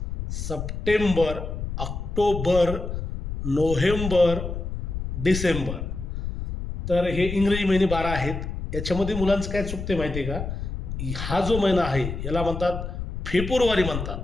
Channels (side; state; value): left; noise; rumble, 5 dB below the sound